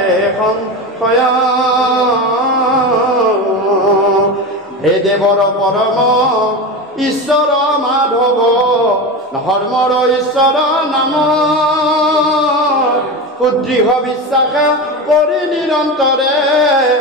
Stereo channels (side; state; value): both; normal; correlation 0.23